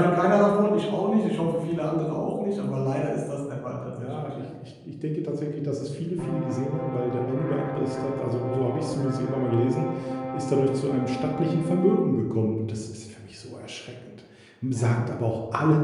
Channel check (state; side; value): identical; both; correlation 1.00